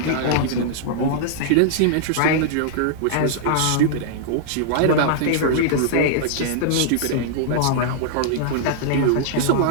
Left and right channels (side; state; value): both; different; correlation -0.01